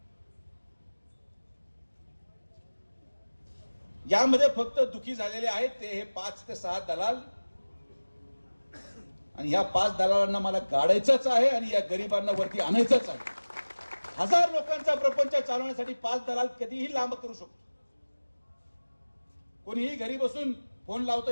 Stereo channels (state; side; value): inverted; both; correlation -1.00